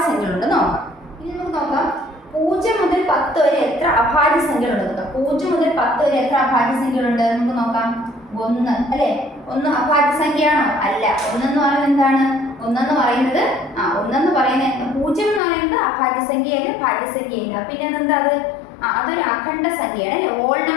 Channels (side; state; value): right; drops out; at 15.4 s